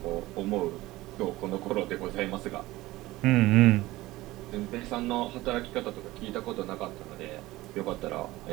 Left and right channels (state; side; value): quieter; left; 18.3 dB